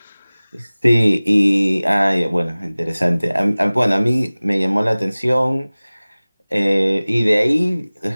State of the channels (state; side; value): inverted; both; correlation -0.99